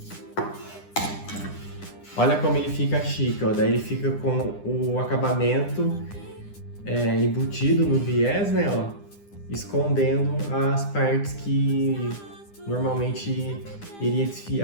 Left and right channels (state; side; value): late; right; 9.9 ms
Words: Olha como ele fica chique, ó. Daí ele fica com o acabamento embutido no viés, né, ó, escondendo as partes que normalmente iria